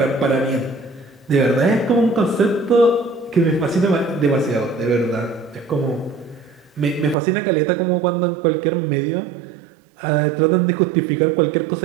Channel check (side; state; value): left; drops out; at 7.2 s